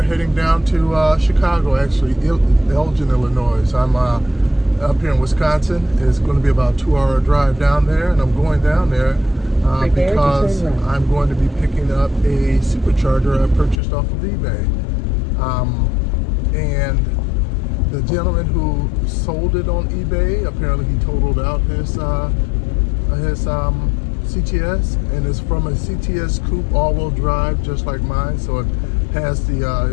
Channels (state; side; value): drops out; right; at 13.8 s